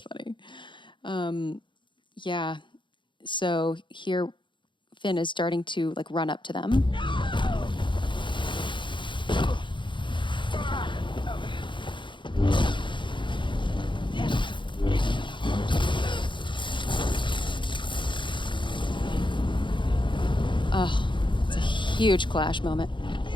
funny. Yeah. So here, Finn is starting to like run up to them. Oh, it's a huge clash moment.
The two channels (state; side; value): late; right; 0.23 ms